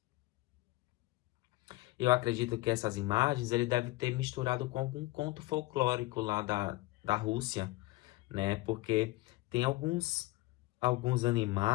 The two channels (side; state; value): right; quieter; 19.4 dB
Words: Eu acredito que essas imagens ele deve ter misturado com algum conto folclórico lá da Rússia, né? Porque tem alguns